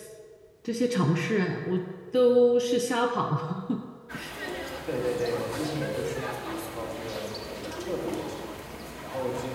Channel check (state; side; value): identical; both; correlation 1.00